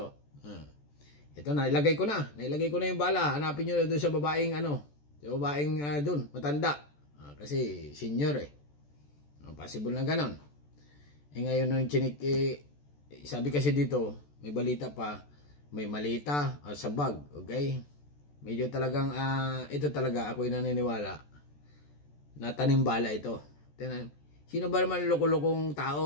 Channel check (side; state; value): right; late; 14 ms